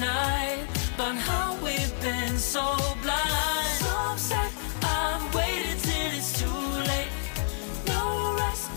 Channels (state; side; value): silent; right; 59 dB below the other